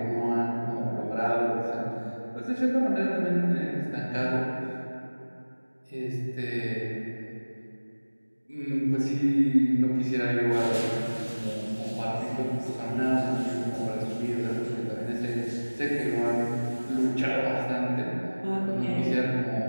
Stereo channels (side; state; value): both; inverted; correlation -1.00